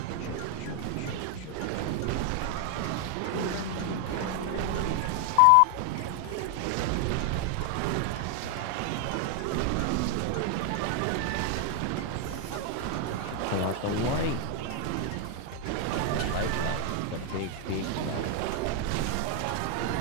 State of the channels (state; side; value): different; both; correlation 0.00